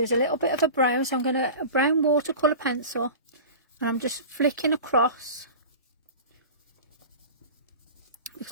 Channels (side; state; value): both; inverted; correlation -0.34